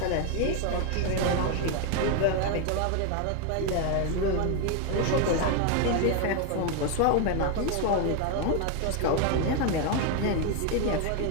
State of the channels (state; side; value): different; both; correlation 0.01